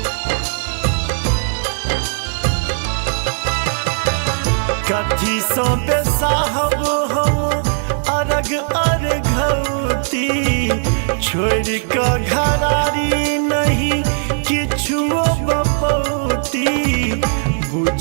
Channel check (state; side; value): silent; left; digital silence